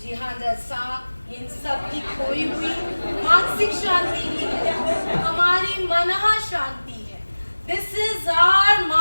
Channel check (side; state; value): both; inverted; correlation -1.00